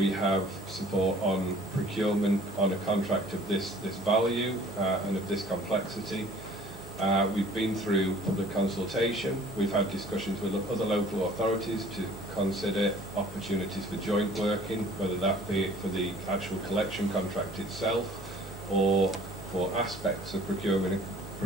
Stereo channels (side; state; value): both; normal; correlation 0.52